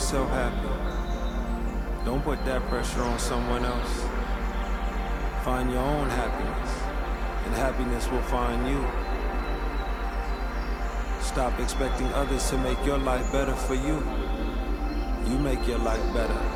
self happy. Don't put that pressure on someone else. Find your own happiness, and happiness will find you. Stop expecting others to make your life better for you. You make your life better.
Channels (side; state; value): both; identical; correlation 1.00